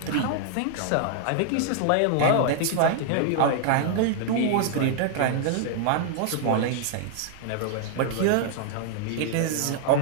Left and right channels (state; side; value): different; both; correlation 0.00